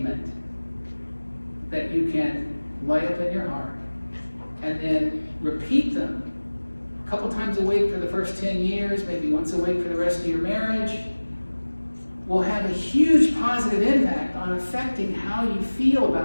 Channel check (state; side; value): inverted; both; correlation -1.00